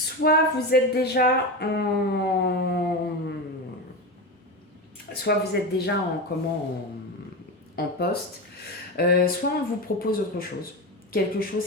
vous êtes déjà en poste, soit on vous propose autre chose. quelque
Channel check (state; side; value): normal; both; correlation 0.19